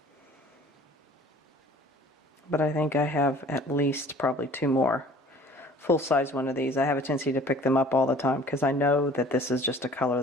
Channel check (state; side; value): normal; both; correlation 0.49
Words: But I think I have at least probably 2 more full-size one of these. I have a tendency to pick them up all the time because I know that this is just a color